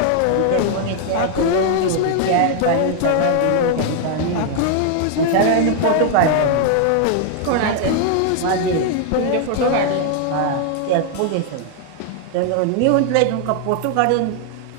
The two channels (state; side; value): different; both; correlation 0.00